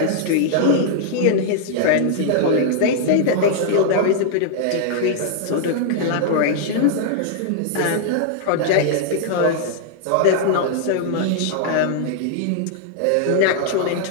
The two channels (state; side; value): different; both; correlation -0.01